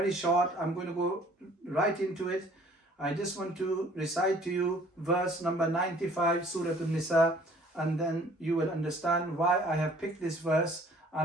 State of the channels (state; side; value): normal; both; correlation 0.55